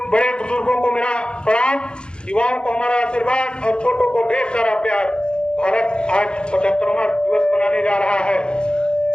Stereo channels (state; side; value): late; right; 0.051 ms